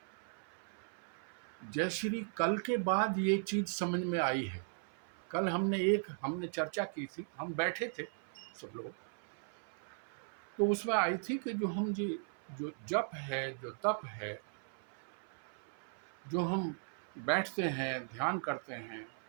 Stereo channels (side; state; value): left; silent; 52 dB below the other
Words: जय श्री कल के बाद ये चीज समझ में आई है। कल हमने चर्चा की थी, हम बैठे थे सब लोग, तो उसमें आई थी कि जो जप है, जो तप है, जो हम बैठते हैं, ध्यान करते हैं,